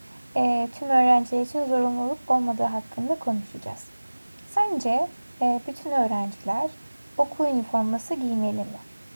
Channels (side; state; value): both; inverted; correlation -1.00